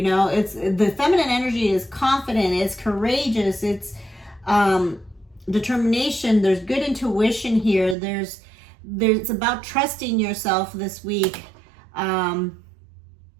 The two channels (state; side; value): drops out; left; at 8.0 s